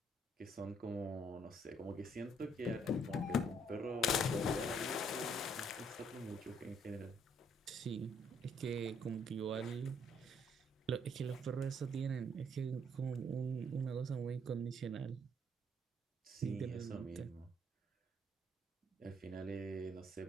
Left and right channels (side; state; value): both; normal; correlation 0.67